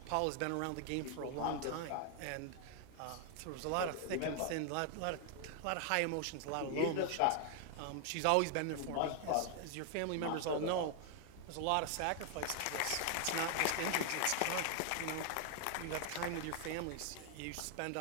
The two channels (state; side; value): different; both; correlation 0.00